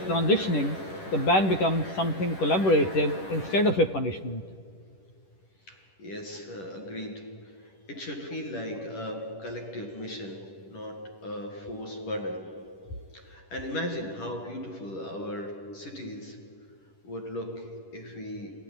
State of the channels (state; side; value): late; right; 10 ms